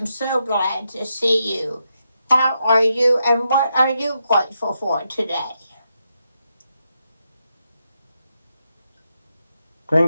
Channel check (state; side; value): inverted; both; correlation -0.84